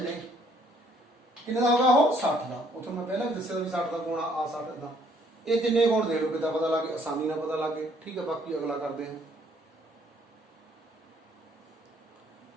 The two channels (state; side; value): normal; both; correlation 0.64